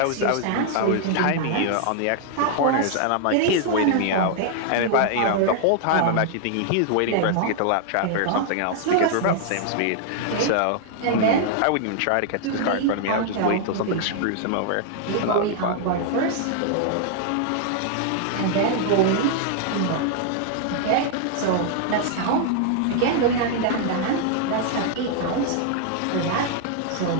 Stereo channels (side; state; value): both; different; correlation 0.00